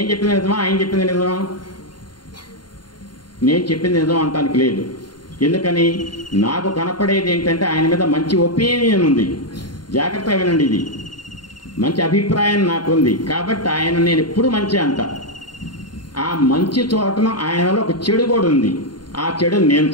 చెప్పింది నిజమా, ఆయన చెప్పింది నిజమా? నేను చెప్పింది నిజం అంటానికి లేదు. ఎందుకని? నాకు కనపడేది ఏంటంటే ఆయన మీద మంచి ఒపీనియన్ ఉంది. జాగ్రత్తగా వినండి, ఇది మంచి అభిప్రాయం నాకుంది కాబట్టి ఆయన నేను ఎప్పుడు మంచి అంట. ఆ మంచి చోటన ఆయనలో ఒక చెడు కూడా ఉంది. ఆ చెడు నేను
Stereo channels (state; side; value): late; right; 0.71 ms